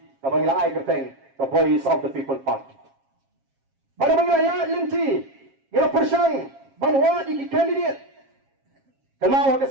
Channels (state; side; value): late; left; 7.4 ms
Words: ka bangila ai kerteng the Voice of the People Party pada mengira linti ngira persang banwa di candidate kenal ke